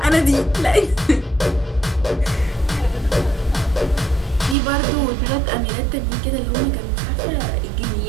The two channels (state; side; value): drops out; left; at 4.5 s